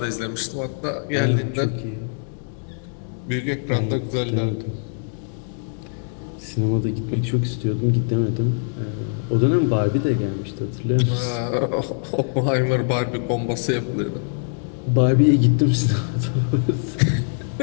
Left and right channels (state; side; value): silent; right; 64 dB below the other